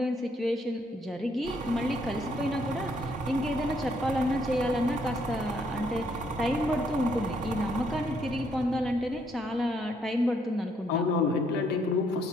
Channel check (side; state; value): both; normal; correlation 0.70